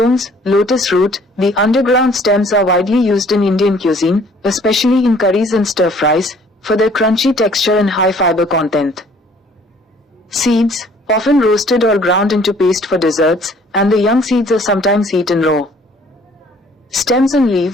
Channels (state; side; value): normal; both; correlation 0.57